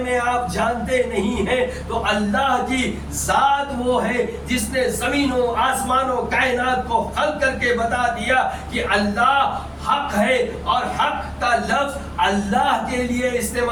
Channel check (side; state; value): both; identical; correlation 1.00